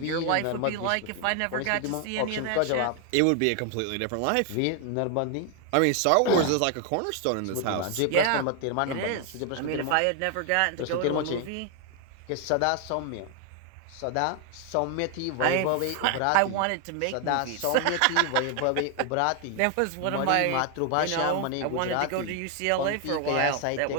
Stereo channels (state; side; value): different; both; correlation 0.01